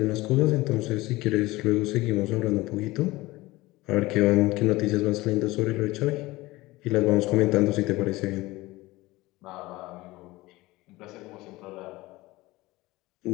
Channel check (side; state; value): right; quieter; 19.9 dB